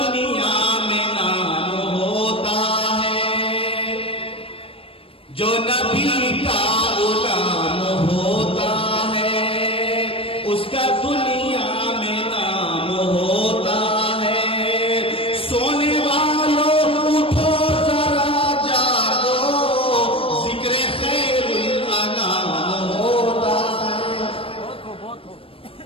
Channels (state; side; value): late; right; 0.27 ms